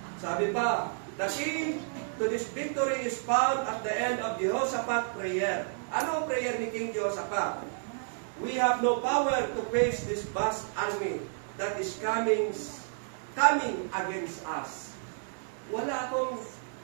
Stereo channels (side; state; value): left; silent; 57 dB below the other